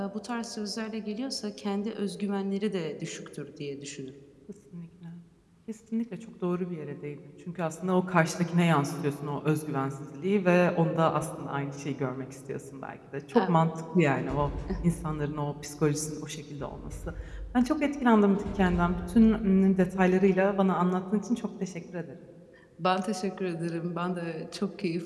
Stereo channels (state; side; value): identical; both; correlation 1.00